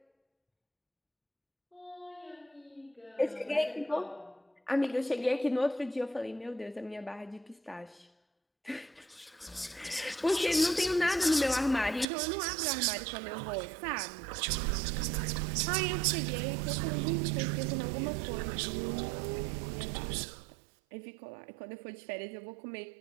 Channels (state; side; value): drops out; left; at 12.1 s